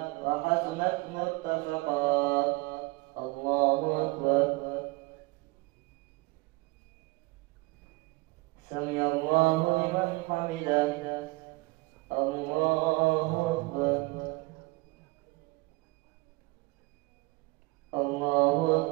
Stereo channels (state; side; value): quieter; left; 24.0 dB